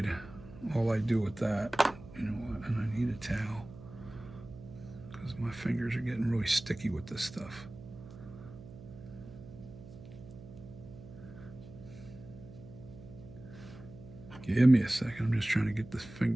all I do with that, you know what, and I need a towel because my fingers are getting really sticky with this stuff. Give me a second. I'm just trying to get this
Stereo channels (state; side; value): noise; right; hum, 16 dB below the sound